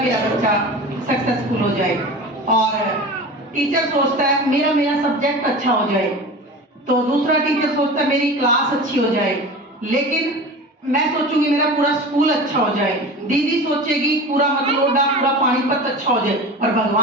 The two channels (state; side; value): normal; both; correlation 0.33